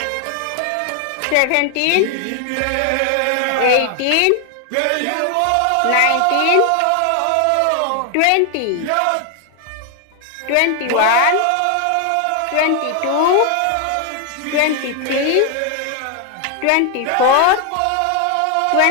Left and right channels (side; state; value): both; different; correlation 0.00